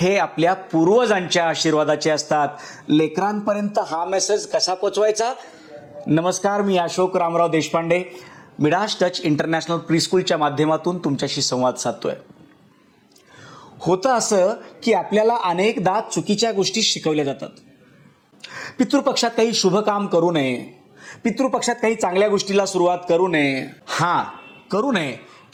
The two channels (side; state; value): both; identical; correlation 1.00